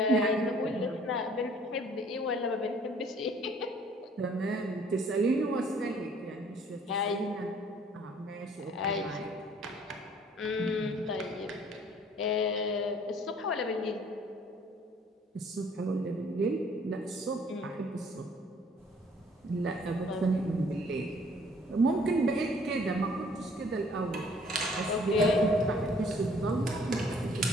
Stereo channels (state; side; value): normal; both; correlation 0.58